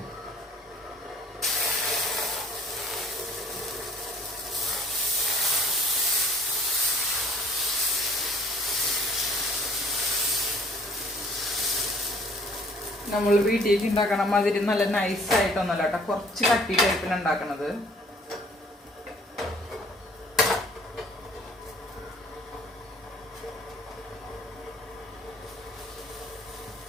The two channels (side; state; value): both; normal; correlation 0.55